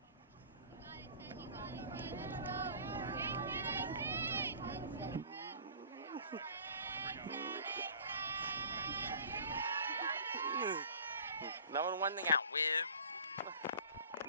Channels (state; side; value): inverted; both; correlation -0.45